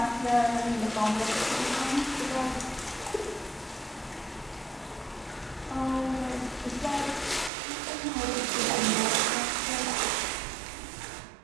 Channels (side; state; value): left; drops out; at 7.5 s